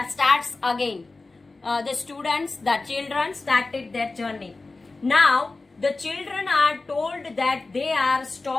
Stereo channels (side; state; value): right; quieter; 3.5 dB